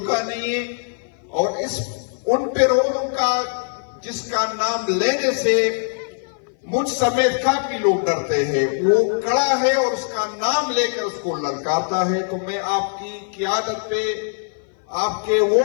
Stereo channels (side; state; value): right; silent; 57 dB below the other